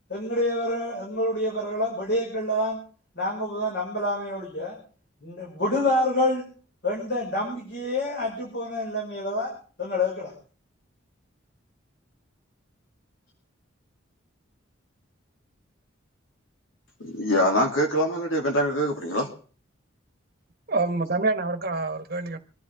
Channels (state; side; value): normal; both; correlation -0.03